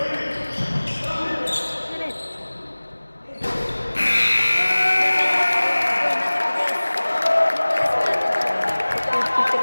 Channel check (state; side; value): inverted; both; correlation -1.00